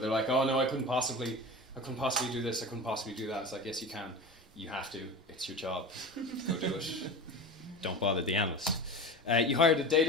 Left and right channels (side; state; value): both; normal; correlation 0.31